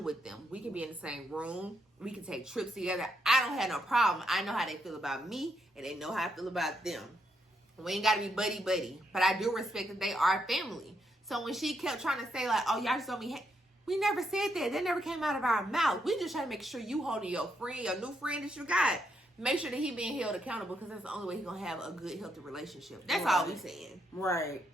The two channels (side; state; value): both; normal; correlation 0.78